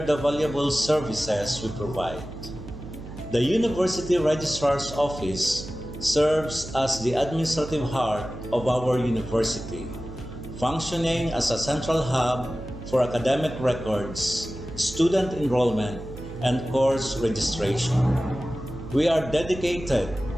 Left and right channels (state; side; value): noise; right; hum, 13 dB below the sound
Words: the valuable services we provide. The University Registrar's Office serves as the administrative heart of our university, functioning as a central hub for academic records, student enrollment, and course registration. We are dedicated